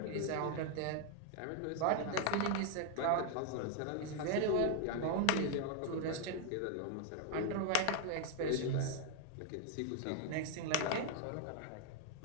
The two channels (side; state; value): both; different; correlation 0.00